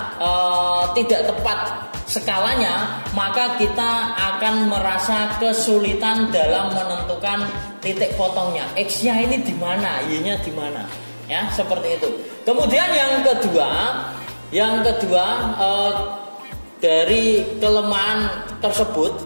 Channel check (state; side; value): inverted; both; correlation -1.00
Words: tidak tepat skalanya, maka kita akan merasa kesulitan dalam menentukan titik potongnya. X-nya ini di mana, Y-nya di mana? Ya, seperti itu. Kemudian yang kedua dari kelemahan tersebut